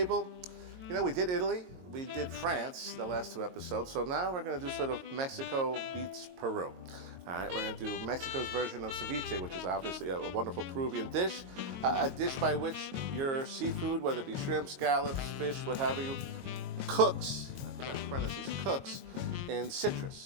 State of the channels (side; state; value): left; late; 22 ms